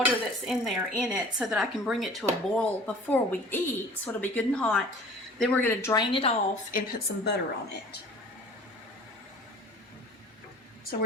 that's in there in it so that I can bring it to a boil before we eat, so it'll be good and hot. Then we're going to drain it off and put some butter on it. So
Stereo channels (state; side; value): normal; both; correlation 0.46